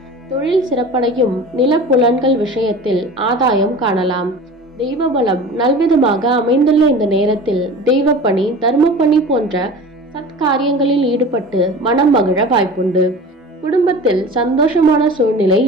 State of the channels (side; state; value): both; normal; correlation 0.37